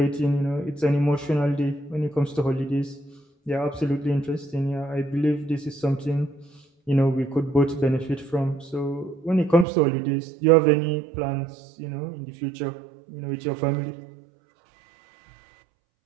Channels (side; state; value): left; drops out; at 9.7 s